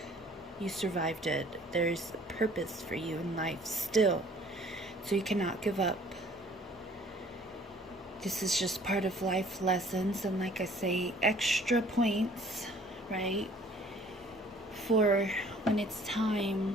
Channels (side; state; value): both; normal; correlation 0.54